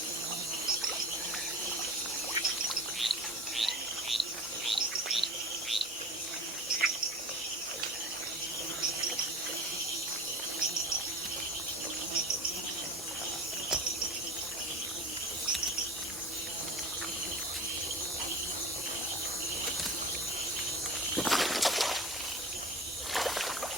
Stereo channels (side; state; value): both; normal; correlation 0.37